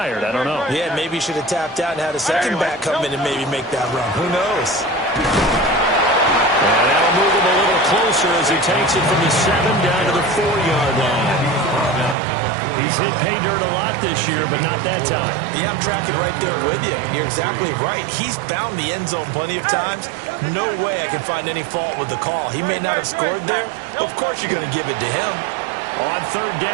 I don't know. Yeah, maybe he should have tapped out and had a second back come in and maybe make that run. Who knows? And that'll move him a little closer as he takes it from the 7 down to the 4-yard line. He's hit pay dirt a lot this year, but not that time. Yeah, I'm tracking right there with you. You're exactly right. He's found the end zone plenty of times. No way I can find any fault with the call. He may not have scored there, but of course you're going to give it to him. On 3rd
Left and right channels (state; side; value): drops out; left; at 12.2 s